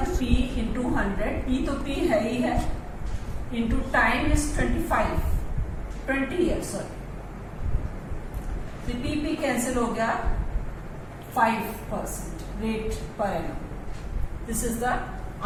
P इंटू 100, P तो P है ही है, इंटू टाइम इज 20 ईयर्स. तो P कैंसिल हो गया, 5% rate per annum. This is the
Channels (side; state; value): both; identical; correlation 1.00